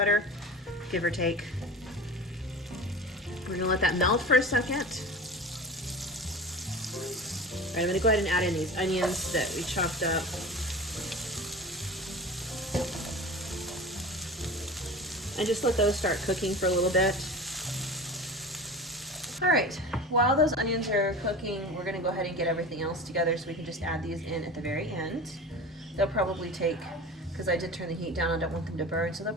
give or take. We're gonna let that melt for a second. All right, I'm gonna go ahead and add in these onions that we chopped up. And just let those start cooking for a little bit. All right, while those onions are cooking, we're gonna go ahead and get everything else together so we can just add these in at the very end. They'll probably take, because I did turn the heat down, I don't want them to burn, so they'll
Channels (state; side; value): normal; both; correlation 0.33